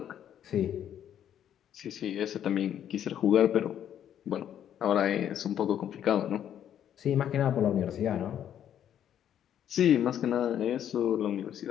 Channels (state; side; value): quieter; right; 10.0 dB